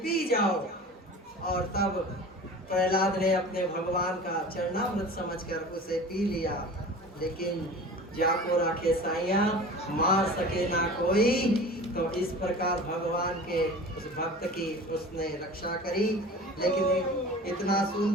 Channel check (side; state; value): both; normal; correlation 0.38